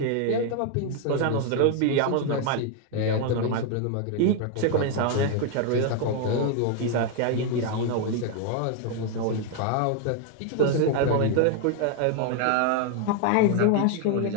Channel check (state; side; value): different; both; correlation 0.01